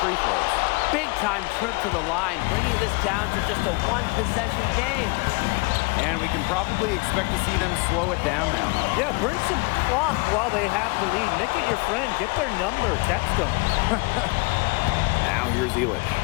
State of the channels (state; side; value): quieter; right; 28.6 dB